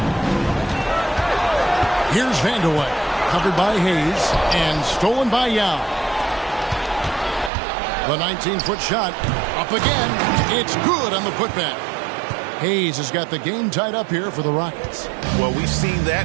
Here's Vandeweghe. Covered by Hayes and stolen by Yao. The 19-foot shot up again. It's good on the putback. Hayes has got the game tied up here for the Rockets. Well, we've seen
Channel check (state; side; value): drops out; left; at 7.5 s